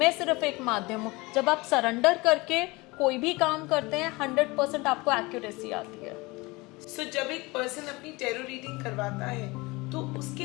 सिर्फ एक माध्यम हूँ. जब आप सरेंडर करके कोई भी काम करते हैं 100% आपको एक्यूरेसी आती है. सो जब एक पर्सन अपनी टैरो रीडिंग करवाता है तो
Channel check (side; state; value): right; quieter; 23.8 dB